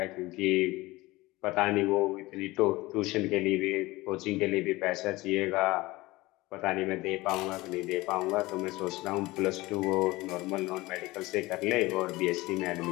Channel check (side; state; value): right; quieter; 20.3 dB